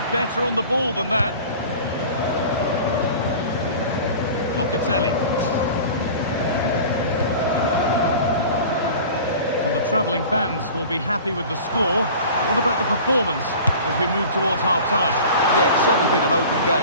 better on the ball than that. Locatelli. Well, the travelling fans will be happy with the score. What about the performance as we move towards half-time? Yeah, it's certainly been an open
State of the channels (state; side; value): inverted; both; correlation -0.40